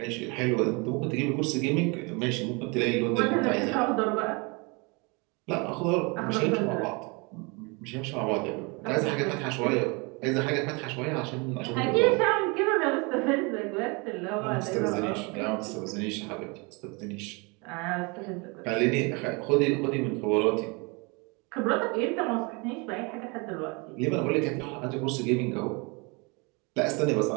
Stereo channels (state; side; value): quieter; left; 29.3 dB